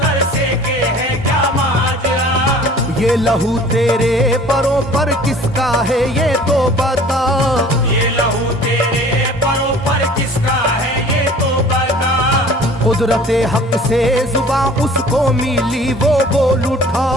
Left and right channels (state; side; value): normal; both; correlation 0.48